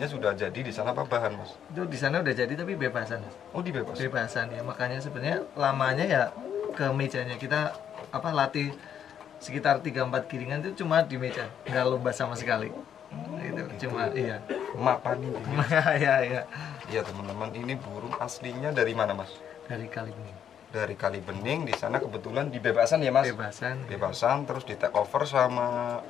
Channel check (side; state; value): right; quieter; 8.9 dB